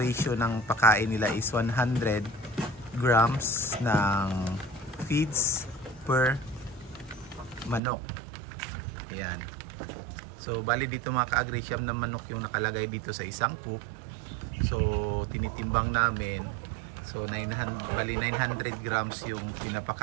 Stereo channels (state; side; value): drops out; left; at 7.8 s